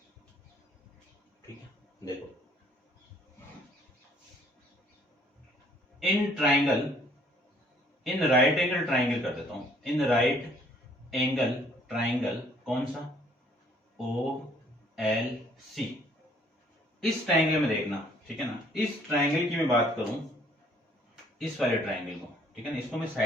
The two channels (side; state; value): both; normal; correlation 0.61